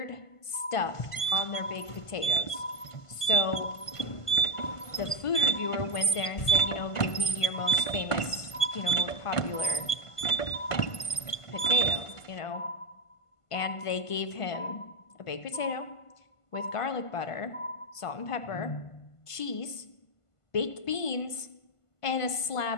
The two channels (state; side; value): late; right; 1.5 ms